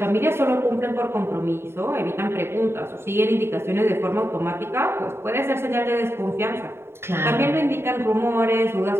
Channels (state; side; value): late; left; 0.12 ms